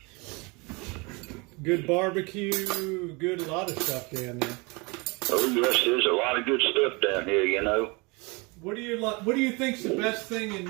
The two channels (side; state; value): left; quieter; 27.8 dB